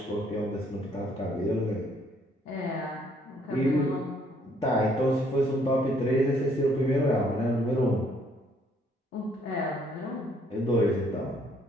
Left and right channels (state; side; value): normal; both; correlation 0.66